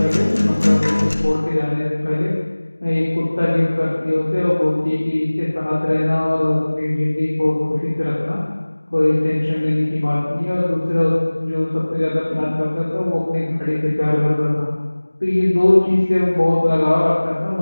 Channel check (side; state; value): both; inverted; correlation -1.00